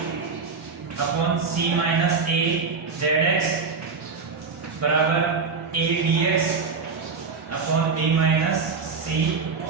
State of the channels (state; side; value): quieter; left; 4.9 dB